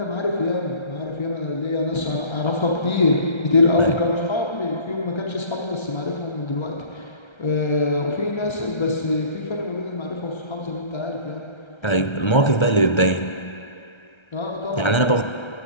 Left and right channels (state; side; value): late; right; 1.3 ms